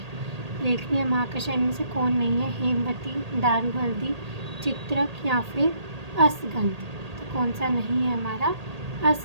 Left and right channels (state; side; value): late; left; 1.8 ms